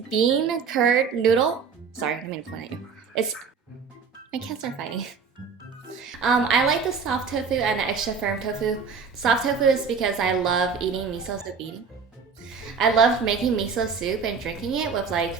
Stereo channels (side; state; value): left; quieter; 5.7 dB